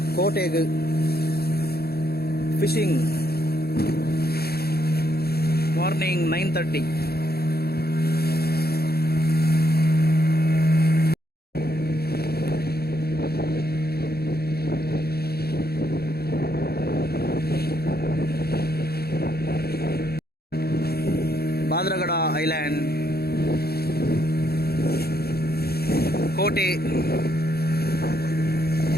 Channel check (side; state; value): right; late; 0.46 ms